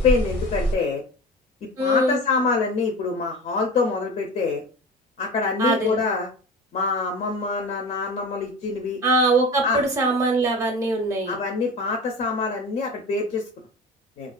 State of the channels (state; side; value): normal; both; correlation 0.32